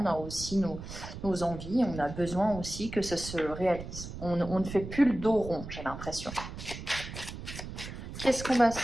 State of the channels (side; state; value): right; noise; rumble, 10 dB below the sound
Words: on a aussi nos envies, on a besoin aussi que ça se réalise. On ne fait plus le dos rond, j'ai l'impression. Qu'est-ce qu'on va se